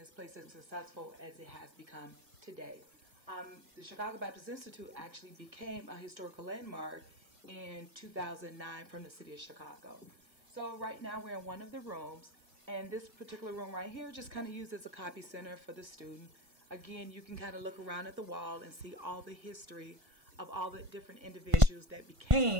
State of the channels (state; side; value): late; left; 1.5 ms